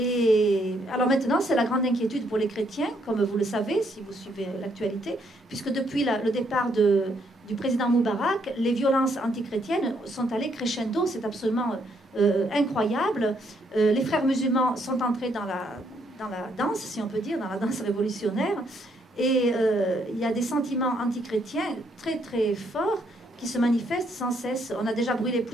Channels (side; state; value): both; normal; correlation 0.72